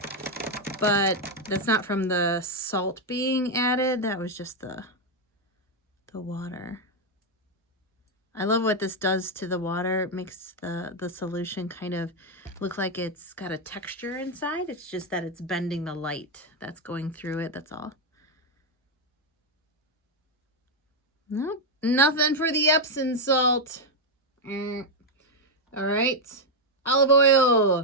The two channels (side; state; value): both; normal; correlation 0.02